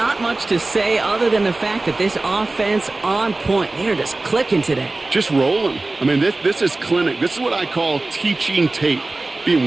much to say other than the fact that this offense on point. They're just clicking today. Just rolling. I mean, this is clinic. This is what I call teaching tape.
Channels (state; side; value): quieter; left; 3.1 dB